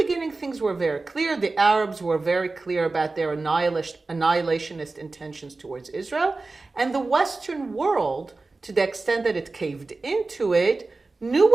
things were very clear. The Arabs were very clear about their annihilationist intentions towards Israel. And the Western world, to the extent that it caved into it, knew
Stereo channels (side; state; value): left; quieter; 3.6 dB